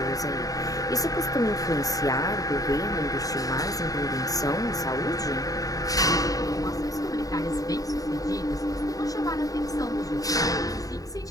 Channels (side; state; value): right; late; 0.17 ms